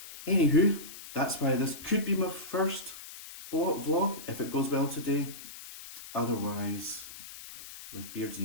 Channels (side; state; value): left; noise; hiss, 14 dB below the sound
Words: Anywho, that's why this could be my first vlog, if it goes well today. Otherwise, with Beards